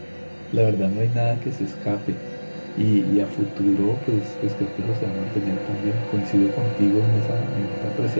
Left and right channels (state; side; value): inverted; both; correlation -1.00